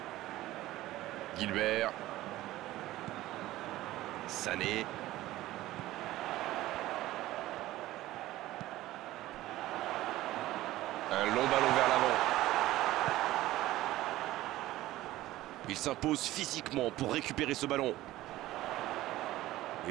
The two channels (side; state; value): left; quieter; 16.1 dB